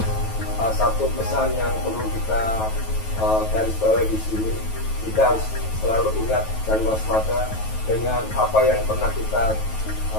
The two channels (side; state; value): right; late; 9.3 ms